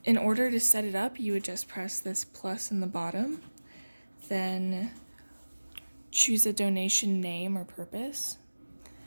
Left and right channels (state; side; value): inverted; both; correlation -1.00